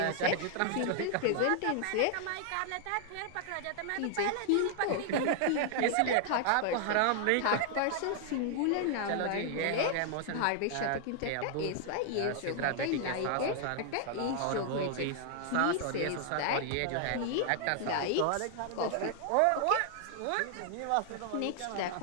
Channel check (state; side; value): different; both; correlation 0.00